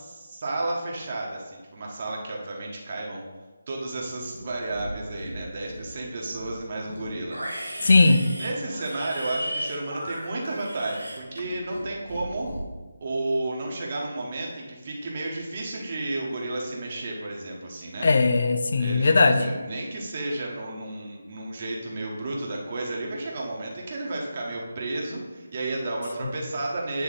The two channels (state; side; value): inverted; both; correlation -0.89